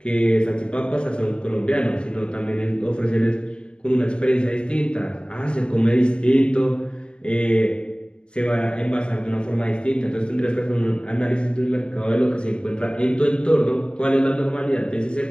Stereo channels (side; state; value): right; late; 0.052 ms